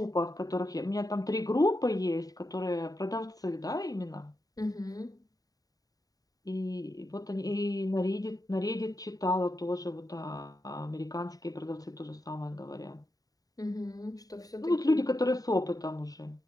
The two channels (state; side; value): late; right; 0.18 ms